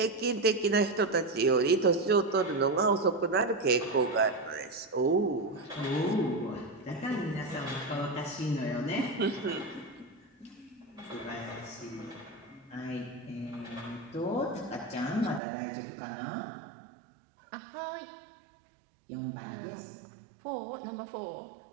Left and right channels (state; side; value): drops out; left; at 15.4 s